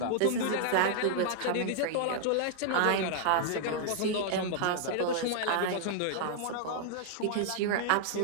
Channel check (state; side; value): different; both; correlation -0.01